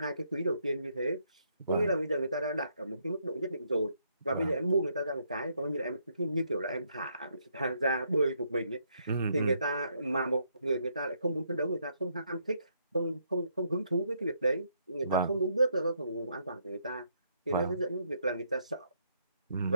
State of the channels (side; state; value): both; inverted; correlation -0.73